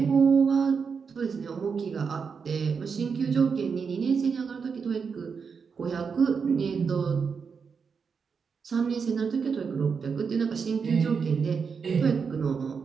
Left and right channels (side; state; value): left; quieter; 5.8 dB